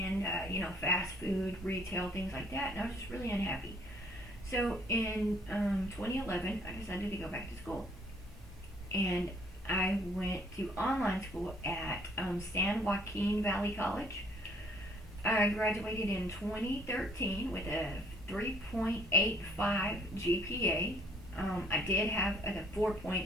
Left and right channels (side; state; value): both; normal; correlation 0.61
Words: fast food, retail, things like that, and I was just really unhappy. So in 2011, I decided to go back to school, and I went to online school at San Joaquin Valley College. I graduated in 2013 with a 3.85 GPA. I did have a